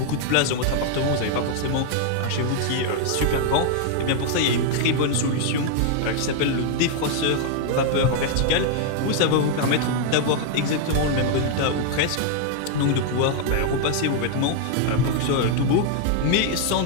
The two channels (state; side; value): different; both; correlation 0.00